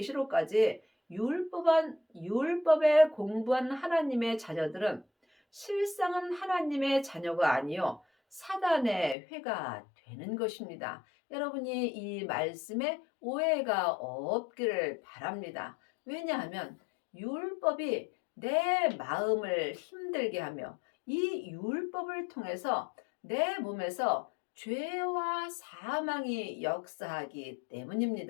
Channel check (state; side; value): drops out; right; at 9.2 s